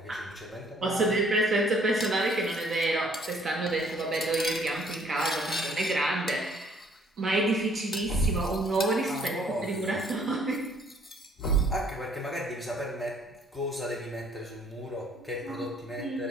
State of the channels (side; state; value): both; normal; correlation 0.62